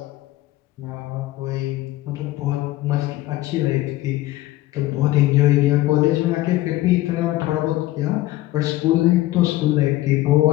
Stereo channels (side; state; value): right; quieter; 16.5 dB